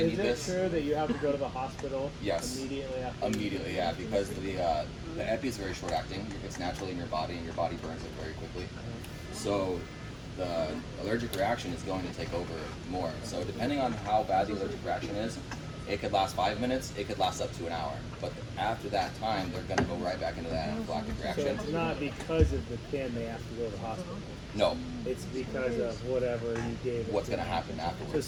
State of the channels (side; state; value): both; identical; correlation 1.00